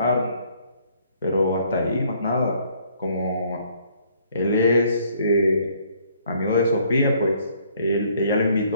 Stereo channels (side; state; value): both; inverted; correlation -0.64